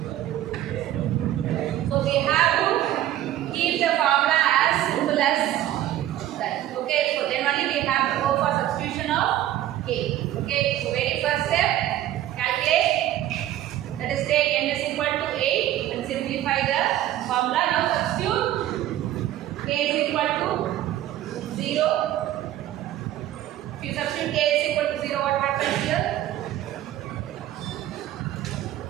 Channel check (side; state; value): left; quieter; 13.1 dB